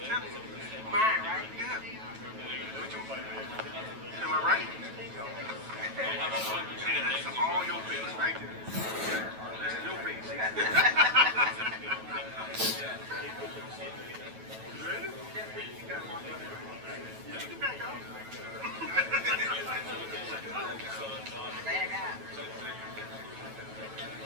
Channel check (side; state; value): left; late; 9.2 ms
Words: telling you. Mine, right? Yeah. What you, am I right? Yeah, that's all your face right there. That's your face. Ready? Get back out.